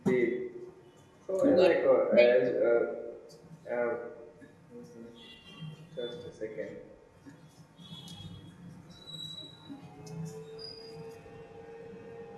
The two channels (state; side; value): identical; both; correlation 1.00